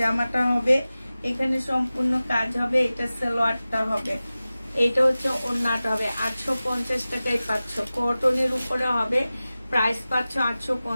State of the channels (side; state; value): both; inverted; correlation -0.96